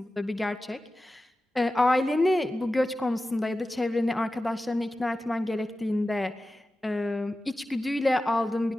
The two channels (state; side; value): normal; both; correlation 0.94